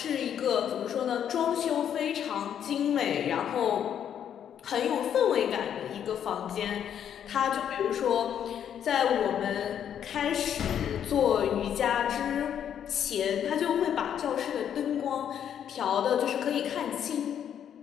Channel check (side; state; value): right; quieter; 9.2 dB